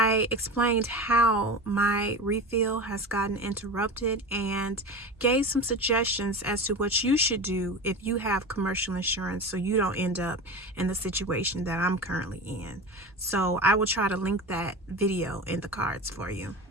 explained how my refill has gotten interrupted and gave some suggestions as to what you should do if you have commercial insurance so you don't end up in the situation that I'm currently in. So I will try to link that video in the cards for you.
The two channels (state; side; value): normal; both; correlation 0.28